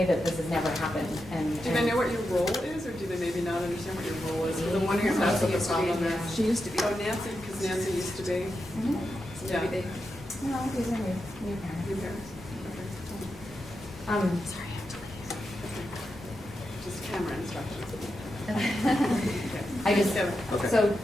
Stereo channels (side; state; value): both; normal; correlation 0.88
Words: that this has never happened, and. Do they know what your role is, or do they maybe not understand what your role is? Because I'm wondering if that's what the problem is. She used to be. Oh, Nancy, because Nancy used to be, Mhm. So yeah. maybe they, No, these are new parents. Your parents. Sorry. Just camera instructions. I just, Okay. so